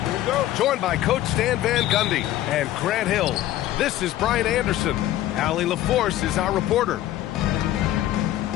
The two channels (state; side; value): quieter; right; 13.8 dB